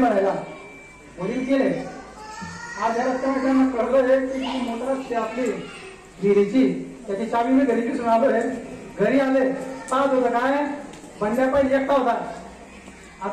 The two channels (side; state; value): both; identical; correlation 1.00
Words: भरायला. वडील गेले. आज या रस्त्यावर त्यांना कळलं की मोटर असते आपली विहिरीची, त्याची चावी मी घरी दिसून आलोय. घरी आले पाहत होतं काय, बंड्या पाहिजे एकटा होता.